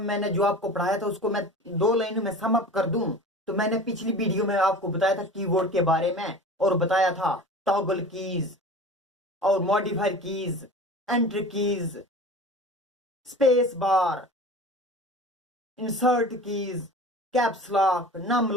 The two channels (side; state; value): both; normal; correlation 0.37